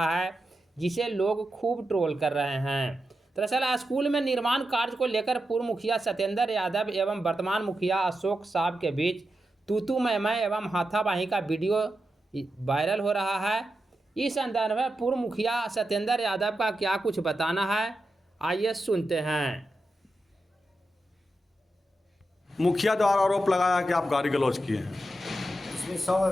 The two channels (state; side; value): normal; both; correlation 0.89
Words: है, जिसे लोग खूब ट्रोल कर रहे हैं। दरअसल स्कूल में निर्माण कार्य को लेकर पूर्व मुखिया सत्येंद्र यादव एवं वर्तमान मुखिया अशोक साहब के बीच तू मैं एवं हाथापाई का वीडियो वायरल हो रहा है। इस संदर्भ में पूर्व मुखिया सत्येंद्र यादव का क्या कुछ बताना है, आइए सुनते हैं। मुखिया द्वारा आरोप लगाया कि आप गाली गलौज किए हैं। इसमें